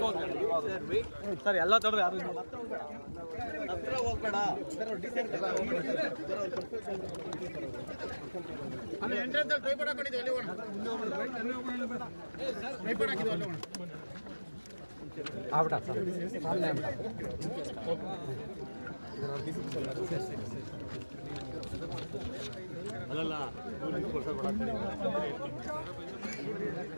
ಸರ್ ಎಲ್ಲ ತಡ್ರಿ ಯಾರು ಹತ್ರ ಹೋಗ್ಬೇಡ ಎಂಟ್ರೆನ್ಸ್ ಟ್ರೈಪಾಡ್ ಹಾಕೊಂಡಿದ್ದೀವಿ ಅಲ್ಲಿ ಹೋಗೋಣ ಟ್ರೈಪಾಡ್ ಹಾಕಿದ್ವಿ ಅಲ್ಲಿ ಹೋಗೋಣ ಆಗ್ಬಿಟ್ಟ ಸರ್ ಸಾಮನೆ ಅಲ್ಲಲ್ಲ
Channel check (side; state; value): both; inverted; correlation -1.00